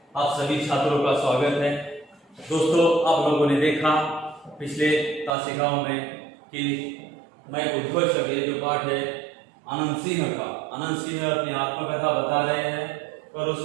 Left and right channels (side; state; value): left; drops out; at 5.3 s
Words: आप सभी छात्रों का स्वागत है। दोस्तों, आप लोगों ने देखा पिछले तासिकाओं में कि मैं उद्घोषक, ये जो पाठ है आनंद सिंह का, आनंद सिंह अपनी आत्मकथा बता रहे हैं और